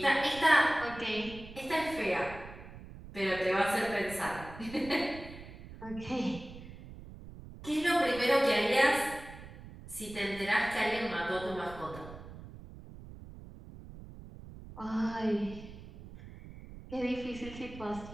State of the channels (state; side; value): noise; right; rumble, 15 dB below the sound